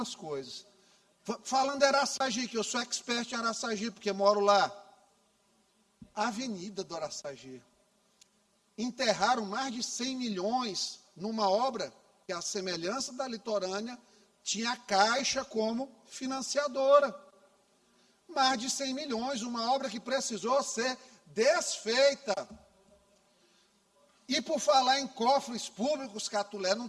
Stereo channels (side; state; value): both; identical; correlation 1.00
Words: coisas. Falando de Araçagi, que eu sou expert em Araçagi, porque moro lá. A Avenida do Araçagi. Enterraram mais de 100 milhões numa obra que, a semelhança da litorânea, tinha a Caixa como financiadora. Mais de 100 milhões, uma obra que precisou ser desfeita. E por falar em cofres públicos, Catulé, não